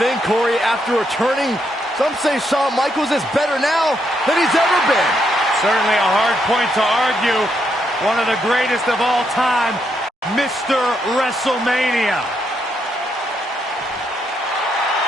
thing, Corey. After returning, some say Shawn Michaels is better now than he's ever been. Certainly a hard point to argue. One of the greatest of all time, Mr. WrestleMania.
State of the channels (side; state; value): both; normal; correlation 0.78